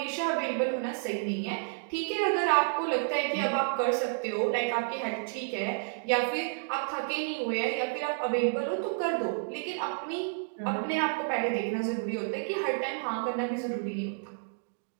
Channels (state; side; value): silent; left; digital silence